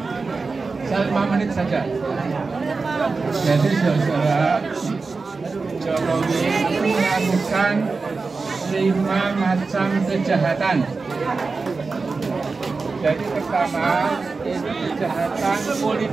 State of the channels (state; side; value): quieter; left; 4.2 dB